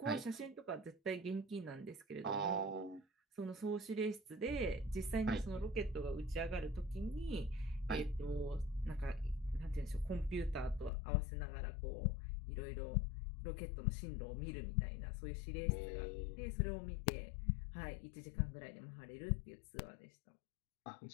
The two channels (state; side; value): drops out; right; at 10.9 s